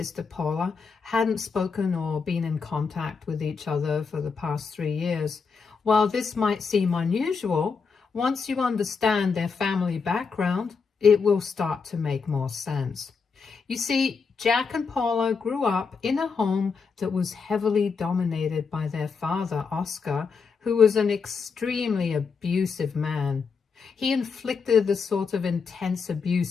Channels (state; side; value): quieter; right; 5.3 dB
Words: Paula hadn't spoken or been in contact with each other for the past 3 years. While this might seem unusual, once you understand their family background, it will start to make more sense. You see, Jack and Paula grew up in a home that was heavily dominated by their father, Oscar, who was an extremely abusive man. He inflicted the sort of intense